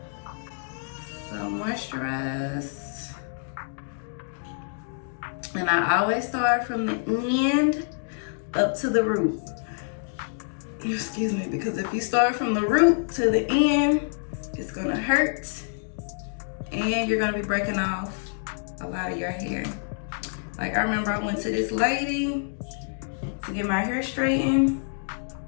So moisturize. And I always start from the end up to the root. Excuse me, because if you start from the root to the end, it's gonna hurt and you're gonna be breaking off a lot of your hair. Like I remember I went to this lady to get my hair straightened.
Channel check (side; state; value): right; silent; digital silence